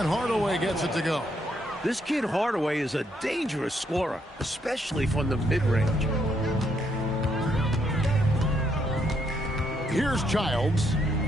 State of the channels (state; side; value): normal; both; correlation 0.74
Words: Hardaway gets it to go. This kid Hardaway is a dangerous scorer, especially from the mid-range. Here's Childs,